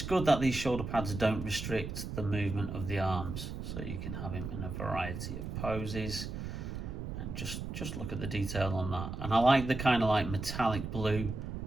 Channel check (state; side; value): noise; right; rumble, 6 dB below the sound